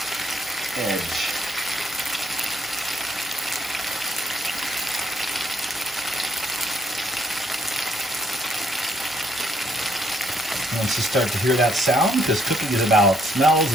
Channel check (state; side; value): normal; both; correlation 0.70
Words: edge. Once you start to hear that sound, because cooking is about smells